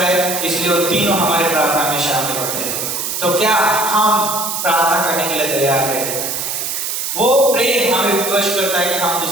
इसलिए वो तीनों हमारे प्रार्थना में शामिल होते हैं। तो क्या हम प्रार्थना करने के लिए तैयार हैं? वो प्रेम हमें विवश करता है कि हम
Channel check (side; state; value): right; noise; hiss, 3 dB below the sound